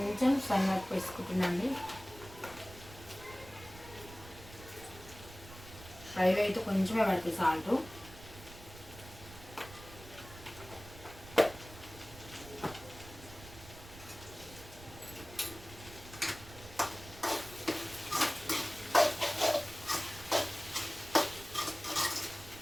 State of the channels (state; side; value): noise; right; rumble, 17 dB below the sound